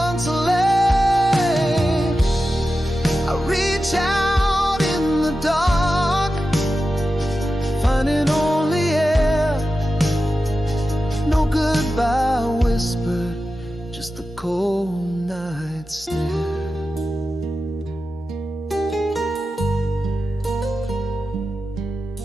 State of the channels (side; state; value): both; normal; correlation 0.92